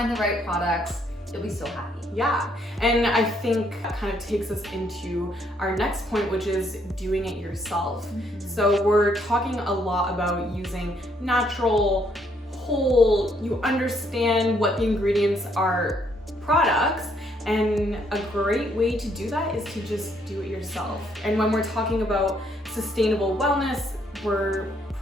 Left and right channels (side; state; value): both; normal; correlation 0.70